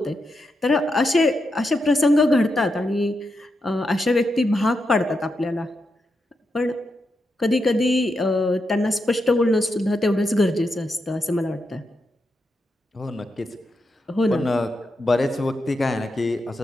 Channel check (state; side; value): normal; both; correlation 0.85